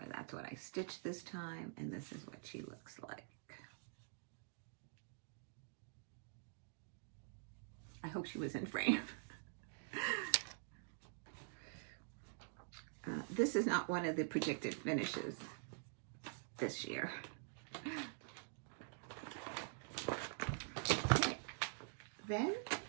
that's what I stitched this time, and this is what she looks like. I hope she was in frame. This is not one of the projected finishes this year. Okay. Then,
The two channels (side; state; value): left; silent; digital silence